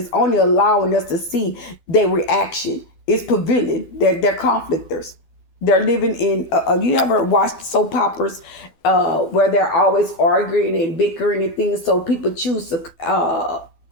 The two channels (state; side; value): late; right; 12 ms